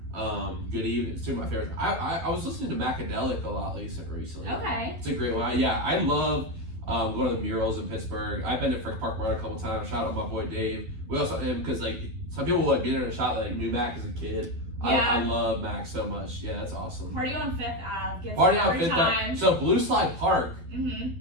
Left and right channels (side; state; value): left; late; 12 ms